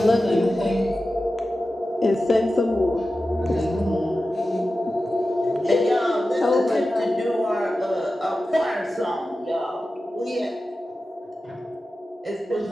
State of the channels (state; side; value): normal; both; correlation 0.93